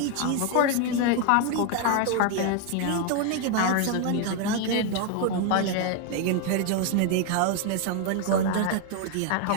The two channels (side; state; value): both; different; correlation 0.01